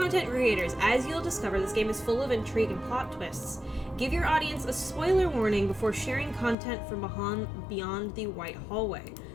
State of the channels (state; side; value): drops out; right; at 6.6 s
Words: creators, as you'll discover, this game is full of intrigue and plot twists. Give your audience a spoiler warning before sharing content from beyond the white hallway,